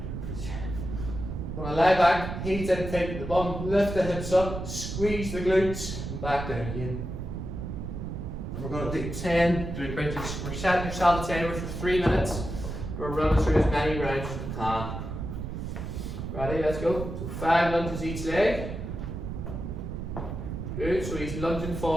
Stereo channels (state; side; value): noise; right; rumble, 6 dB below the sound